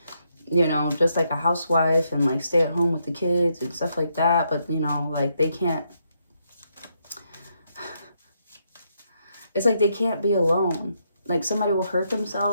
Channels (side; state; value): both; inverted; correlation -0.78